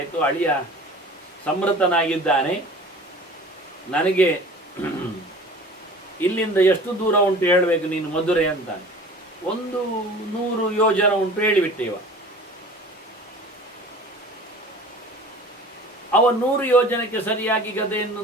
ಅಳಿಯ ಸಮೃತನಾಗಿದ್ದಾನೆ, ನನಗೆ ಇಲ್ಲಿಂದ ಎಷ್ಟು ದೂರ ಉಂಟು ಹೇಳಬೇಕು ನೀನು ಮಧುರೆ ಅಂತಾನೆ. 100 ಯೋಜನ ಉಂಟು ಹೇಳಿಬಿಟ್ಟೆ ಇವ. ಅವ 100 ಯೋಜನಕ್ಕೆ ಸರಿಯಾಗಿ ಗದೆಯನ್ನು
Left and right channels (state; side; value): normal; both; correlation 0.42